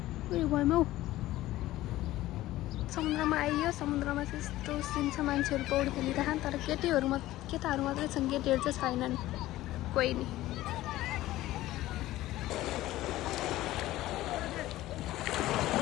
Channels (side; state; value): right; quieter; 16.0 dB